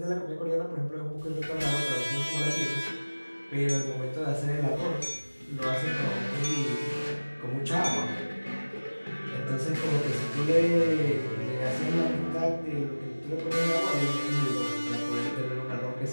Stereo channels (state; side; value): inverted; both; correlation -1.00